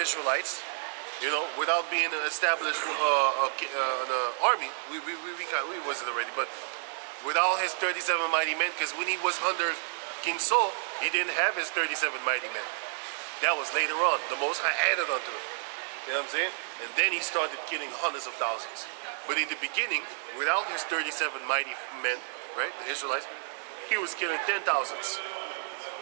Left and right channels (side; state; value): left; silent; digital silence